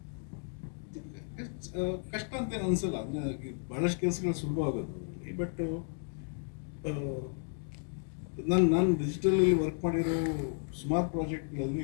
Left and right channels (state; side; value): silent; right; 56 dB below the other